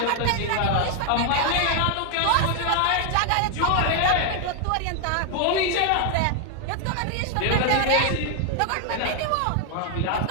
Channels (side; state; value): both; different; correlation 0.00